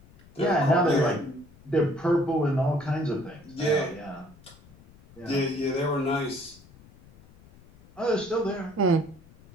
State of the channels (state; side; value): noise; left; rumble, 24 dB below the sound